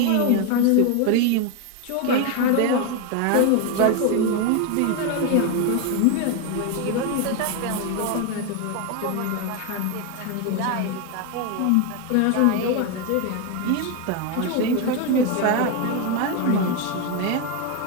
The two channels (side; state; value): both; different; correlation 0.02